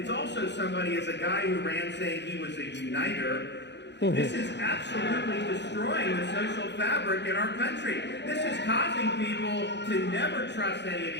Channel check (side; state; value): right; late; 0.51 ms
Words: also somebody, as a guy who ran saying he was a uniter, this is absolutely destroying the social fabric in our country. This is causing people to never trust any of